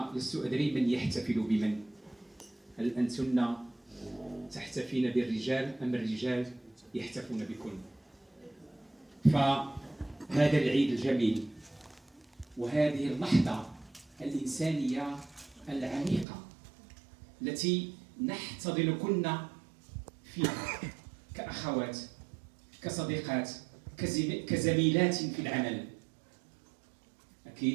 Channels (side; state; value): left; drops out; at 16.2 s